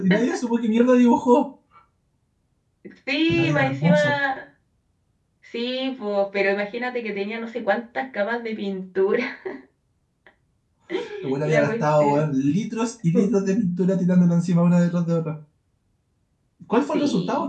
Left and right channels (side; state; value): both; identical; correlation 1.00